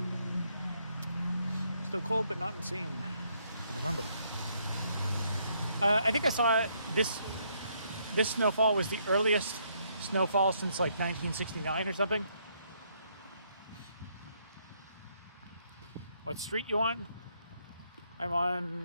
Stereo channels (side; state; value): both; inverted; correlation -0.72